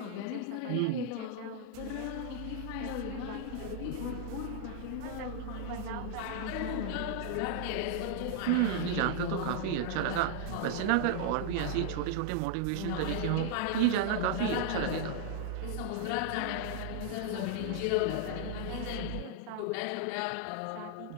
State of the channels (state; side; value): different; both; correlation -0.01